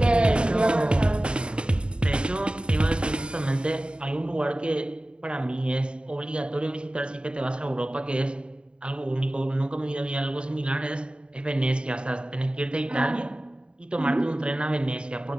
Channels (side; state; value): left; late; 0.052 ms